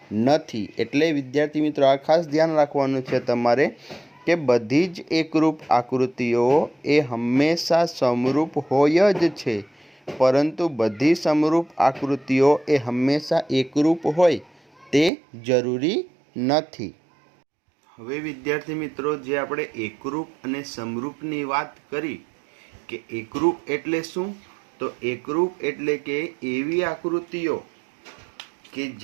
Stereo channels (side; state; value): left; drops out; at 15.1 s